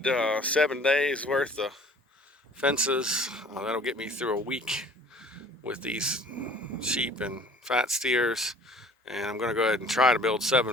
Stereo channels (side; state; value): both; normal; correlation 0.50